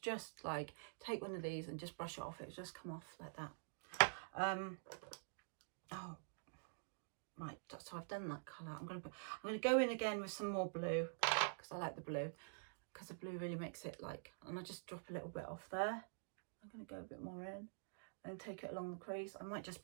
just like take one of these and just brush it off. It'll just come off like that. Oh, right. So I've done that colour. I'm going to go in again with some more blue, because I like the blue, because the blue really makes it like, and I just drop a little bit off there. I'm going to go a bit more in and take it along the crease. I might just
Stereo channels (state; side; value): silent; left; digital silence